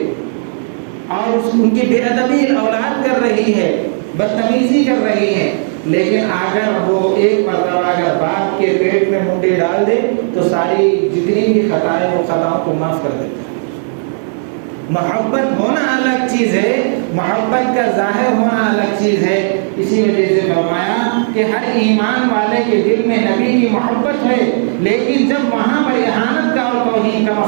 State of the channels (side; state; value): left; silent; digital silence